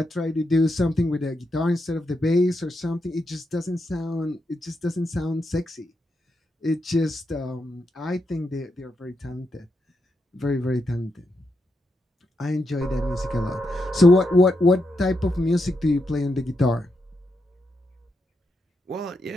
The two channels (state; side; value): normal; both; correlation 0.83